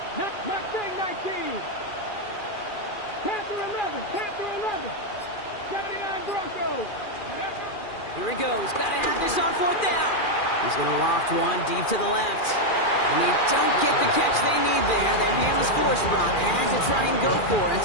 Mustang 19. Panther 11. Panther 11. 79 Broncos. Here he goes. Gotta have this on 4th down. He's gonna loft one deep to the left. And they don't get the catch they need there. Their hand was forced. Brock had to try and go for it,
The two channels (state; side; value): late; right; 2.4 ms